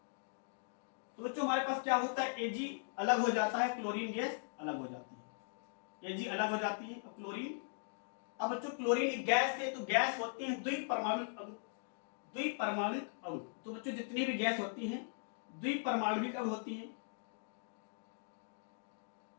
तो बच्चों हमारे पास क्या होता है, Ag अलग हो जाता है, क्लोरीन गैस अलग हो जाती है, Ag अलग हो जाती है और क्लोरीन। अब बच्चों क्लोरीन एक गैस है, तो गैस होती है द्विपरमाणुक अणु, द्विपरमाणुक अणु। तो बच्चों जितनी भी गैस होती हैं द्विपरमाणुक अणु होती हैं।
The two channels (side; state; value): right; silent; digital silence